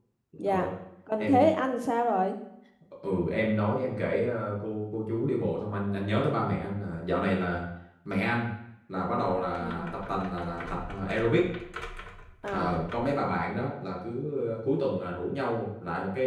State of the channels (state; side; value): identical; both; correlation 1.00